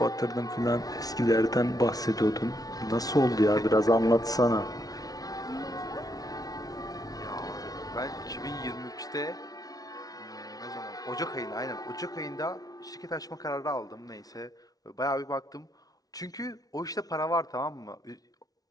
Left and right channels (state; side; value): late; right; 0.18 ms